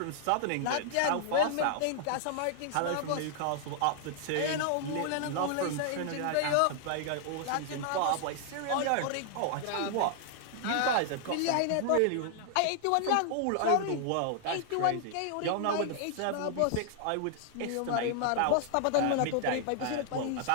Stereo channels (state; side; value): different; both; correlation 0.00